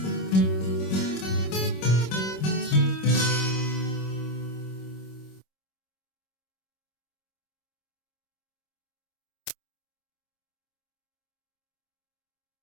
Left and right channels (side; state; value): right; late; 26 ms